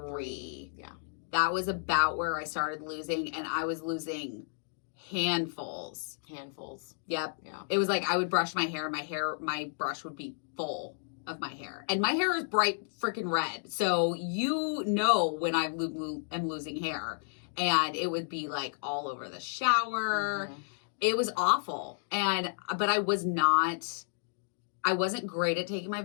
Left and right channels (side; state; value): right; silent; digital silence